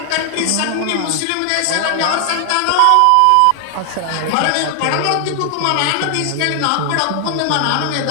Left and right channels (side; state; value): both; different; correlation 0.00